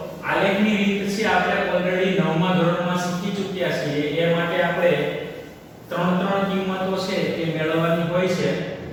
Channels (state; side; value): identical; both; correlation 1.00